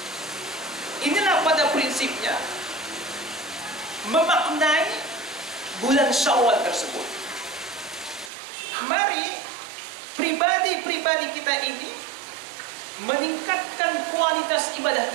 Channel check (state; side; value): drops out; left; at 8.3 s